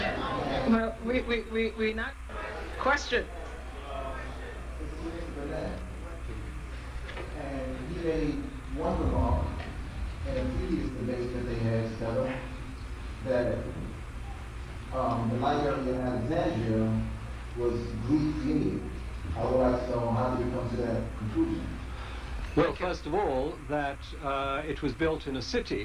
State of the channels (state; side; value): identical; both; correlation 1.00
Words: Well, we not. Question. And he made one remark in a previous debate that they had together that the library in Alexandria was Greek-led. I would like to know how did you come to that conclusion? Well, first of all, that it was built in a